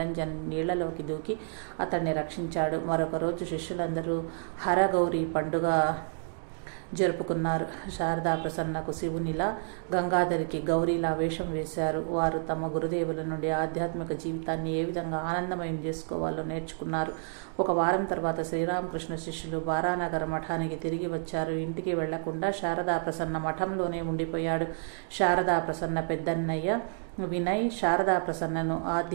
నీళ్లలోకి దూకి అతన్ని రక్షించాడు. మరొక రోజు శిష్యులందరూ హరగౌరి పండుగ జరుపుకున్నారు. శారదా ప్రసన్నకు శివునిలా, గంగాధరికి గౌరీలా వేషం వేశారు. వారు తమ గురుదేవుల నుండి ఆధ్యాత్మిక జీవితాన్ని ఏ విధంగా ఆనందమయం చేసుకోవాలో నేర్చుకున్నారు. ఒక వారం తర్వాత శ్రీరామకృష్ణ శిష్యులు బారానగర్ మఠానికి తిరిగి వచ్చారు. ఇంటికి వెళ్లకుండా శారదా ప్రసన్న మఠంలోనే ఉండిపోయాడు. శారదా ప్రసన్న పెద్దన్నయ్య వినయ్ శారదా ప్రసన్నను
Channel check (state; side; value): silent; left; digital silence